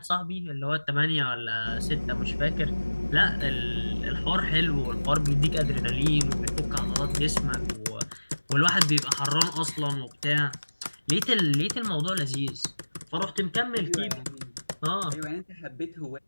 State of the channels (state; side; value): inverted; both; correlation -1.00